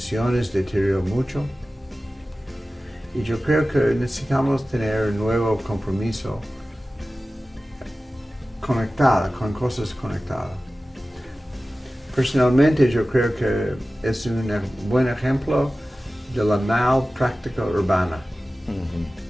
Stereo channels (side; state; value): both; normal; correlation 0.96